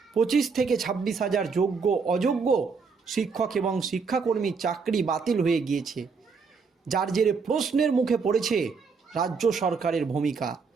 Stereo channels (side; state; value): left; quieter; 5.1 dB